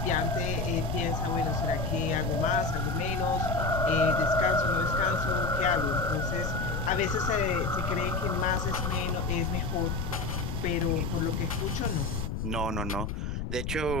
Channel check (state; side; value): noise; left; rumble, 3 dB below the sound